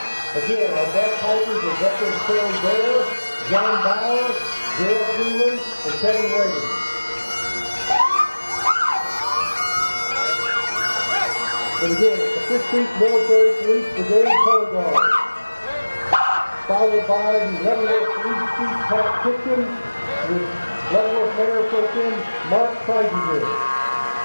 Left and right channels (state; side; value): inverted; both; correlation -1.00